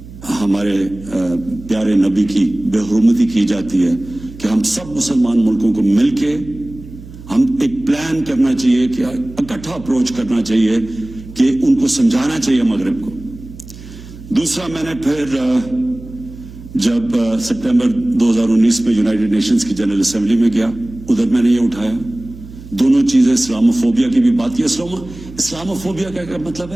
ہمارے پیارے نبی کی بے حرمتی کی جاتی ہے، کہ ہم سب مسلمان ملکوں کو مل کے ہم ایک پلان کرنا چاہیے، کہ اکٹھا اپروچ کرنا چاہیے، کہ ان کو سمجھانا چاہیے مغرب کو. دوسرا، میں نے پھر جب سپٹمبر 2019 میں یونائٹڈ نیشنز کی جنرل اسمبلی میں گیا، ادھر میں نے یہ اٹھایا، دونوں چیزیں، اسلاموفوبیا کی بھی بات کی. اسلاموفوبیا کا کیا مطلب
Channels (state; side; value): noise; right; hum, 16 dB below the sound